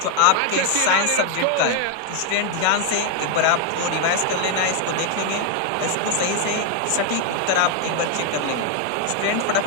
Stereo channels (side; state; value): both; different; correlation 0.01